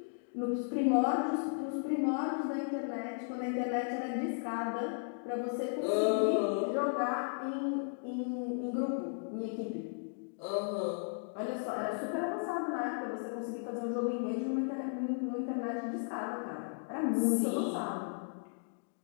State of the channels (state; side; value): silent; right; digital silence